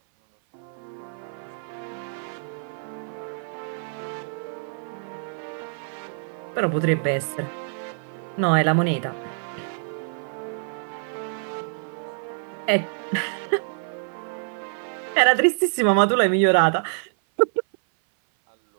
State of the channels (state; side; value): silent; left; 57 dB below the other